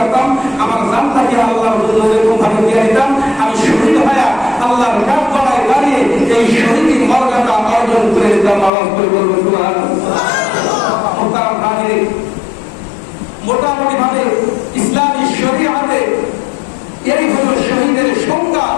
আমার জানটাকে আল্লাহর জন্য এরকম ভাবে দিয়ে দিতাম, আমি শহীদ হয়ে আল্লাহর কাঠ গড়ায় দাঁড়িয়ে এই শহীদ মর্যাদা অর্জন করে দিতাম। আওয়াজ করে বলবো সুবহানাল্লাহ। মোটামুটি ভাবে ইসলামী শরীয়তে এই হলো শহীদের সংজ্ঞা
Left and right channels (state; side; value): drops out; right; at 8.7 s